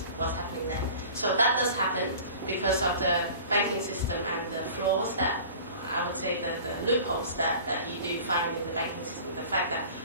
What's happening there? So that does happen because of the banking system and the flaws that, I would say, the loopholes that you do find in the banking system. The fact that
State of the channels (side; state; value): both; inverted; correlation -0.42